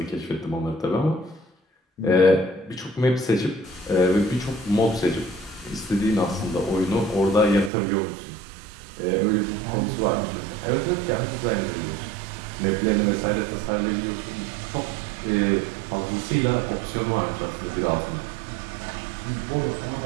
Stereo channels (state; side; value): drops out; left; at 7.7 s